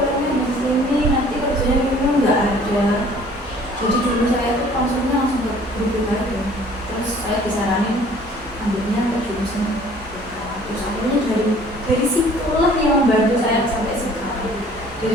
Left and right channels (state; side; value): normal; both; correlation 0.53